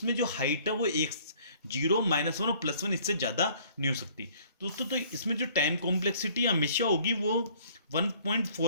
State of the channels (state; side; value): inverted; both; correlation -0.58